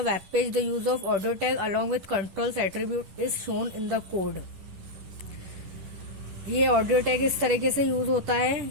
web page. The use of audio tag along with controls attribute is shown in the code. ये audio tag इस तरीके से use होता है।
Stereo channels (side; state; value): left; late; 10 ms